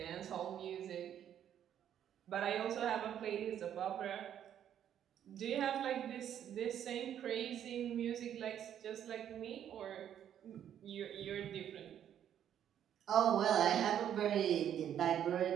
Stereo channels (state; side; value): quieter; left; 9.9 dB